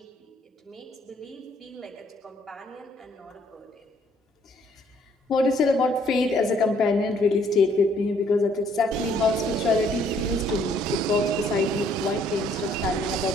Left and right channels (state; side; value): normal; both; correlation 0.64